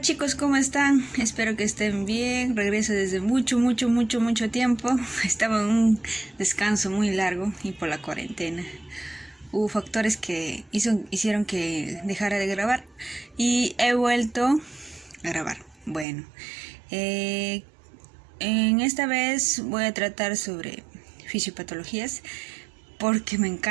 chicos, ¿cómo están? Espero que estén bien. Regreso desde mucho tiempo. Estaba en un descanso muy largo y por la cuarentena. Hubo factores que hicieron que dejara de grabar y he vuelto a grabar. Bueno, en esta vez voy a tratar sobre fisiopatologías porque me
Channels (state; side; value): drops out; left; at 16.1 s